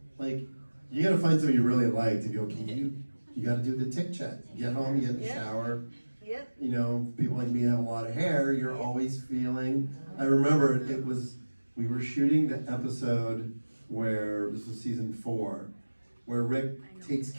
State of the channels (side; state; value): both; inverted; correlation -1.00